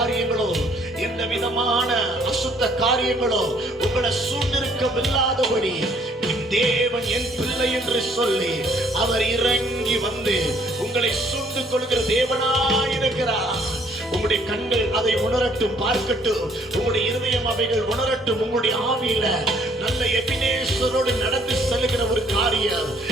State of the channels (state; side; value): normal; both; correlation 0.63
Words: எந்த விதமான அசுத்த காரியங்களோ உங்களை சூழ்ந்திருக்கவில்லாதபடி என் தேவன் என் பிள்ளை என்று சொல்லி அவர் இறங்கி வந்து உங்களை சூழ்ந்து கொள்கிற தேவனாயிருக்கிறார். உங்களுடைய கண்கள் அதை உணரட்டும், பார்க்கட்டும். உங்களுடைய இருதயம் அவைகள் உணரட்டும். உங்களுடைய ஆவியில நல்ல எபினேசரோடு நடந்து செல்லுகிற ஒரு காரியம்